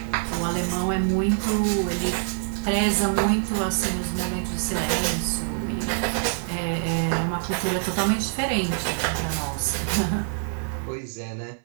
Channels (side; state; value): left; silent; 59 dB below the other